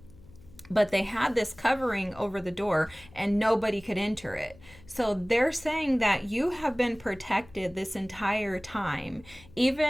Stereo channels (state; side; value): noise; left; hum, 23 dB below the sound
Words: But they had this covering over the door and nobody could enter it. So they're saying that you have been protected this entire time,